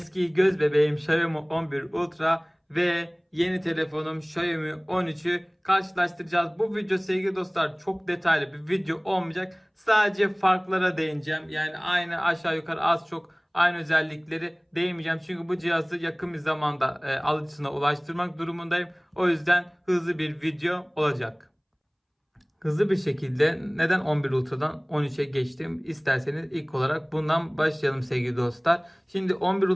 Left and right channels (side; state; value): both; identical; correlation 1.00